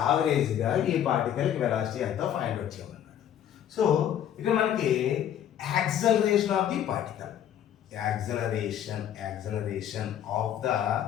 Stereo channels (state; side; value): quieter; right; 10.2 dB